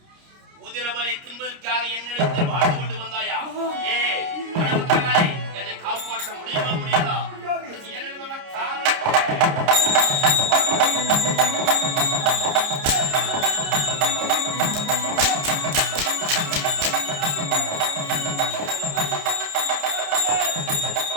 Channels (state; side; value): late; left; 29 ms